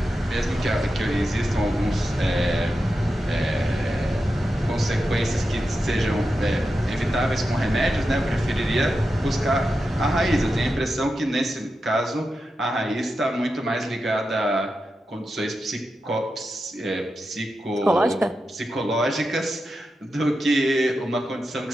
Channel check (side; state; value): both; normal; correlation 0.90